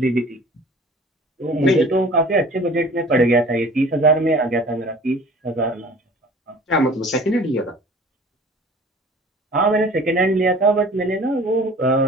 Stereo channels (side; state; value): both; normal; correlation 0.46